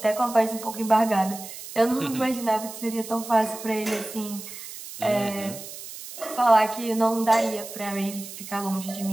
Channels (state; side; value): noise; right; hiss, 12 dB below the sound